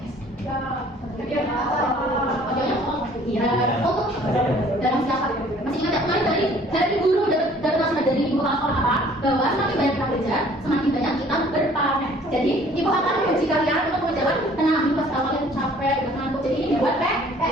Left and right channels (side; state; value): both; normal; correlation 0.55